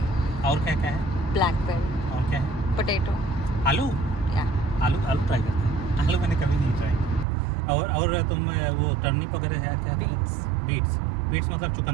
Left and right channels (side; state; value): left; drops out; at 7.2 s